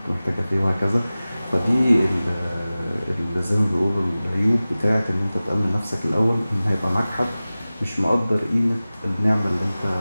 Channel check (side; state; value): both; inverted; correlation -0.97